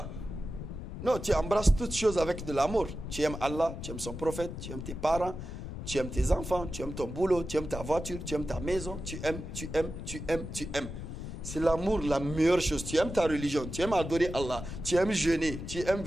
Non, tu embrasses toutes choses avec de l'amour. Tu aimes Allah, tu aimes son prophète, tu aimes tes parents, tu aimes tes enfants, tu aimes ton boulot, tu aimes ta voiture, tu aimes ta maison, tu aimes. C'est l'amour la meilleure chose. Tu aimes ta religion, tu aimes adorer Allah, tu aimes jeûner, tu aimes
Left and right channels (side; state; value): left; noise; rumble, 8 dB below the sound